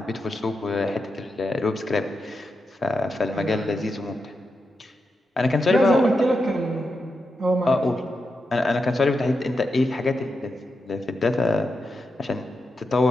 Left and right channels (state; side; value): normal; both; correlation 0.87